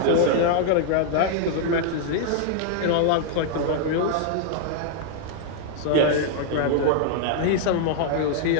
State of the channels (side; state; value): both; different; correlation -0.01